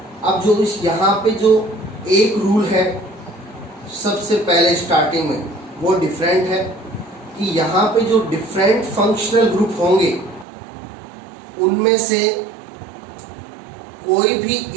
अब जो इस यहाँ पे जो एक रूल है सबसे पहले स्टार्टिंग में वो डिफरेंट है कि यहाँ पे जो डिफरेंट फंक्शनल ग्रुप होंगे उनमें से कोई भी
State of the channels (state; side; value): drops out; left; at 10.5 s